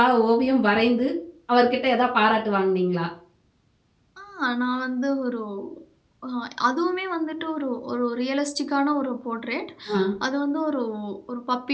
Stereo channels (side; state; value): both; identical; correlation 1.00